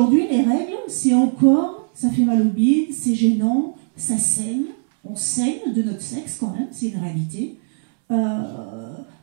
les règles, c'est encore, ça fait mal au bide, c'est gênant, ça saigne. On saigne de notre sexe quand même, c'est une réalité.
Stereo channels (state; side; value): silent; left; 66 dB below the other